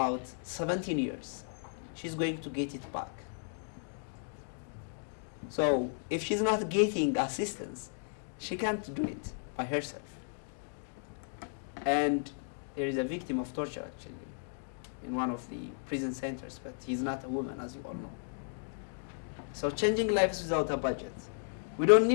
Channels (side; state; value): right; silent; digital silence